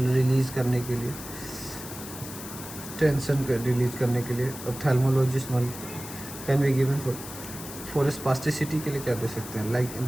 रिलीज़ करने के लिए, टेंशन को रिलीज करने के लिए, ophthalmologist can be given for spasticity के लिए क्या दे सकते हैं, like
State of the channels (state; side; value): noise; left; hiss, 12 dB below the sound